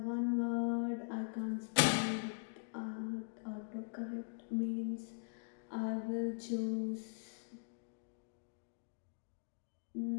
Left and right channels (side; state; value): right; silent; digital silence